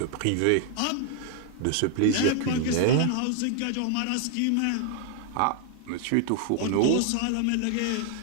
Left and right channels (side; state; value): both; different; correlation 0.00